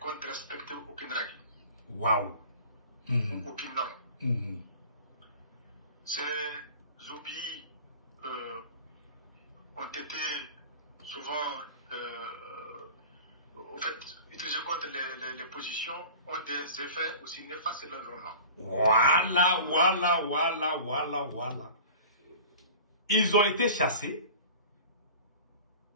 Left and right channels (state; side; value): inverted; both; correlation -0.40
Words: respecter aucune règle. Waouh. Aucune norme. Ces oublis ont été souvent utilisés contre les positions, ont des effets aussi néfastes sur l'environnement. Voilà. Ils ont été chassés.